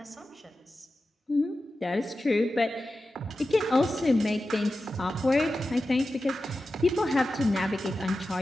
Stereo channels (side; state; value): both; normal; correlation 0.93